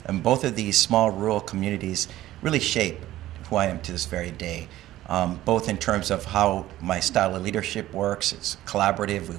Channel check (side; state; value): left; quieter; 14.8 dB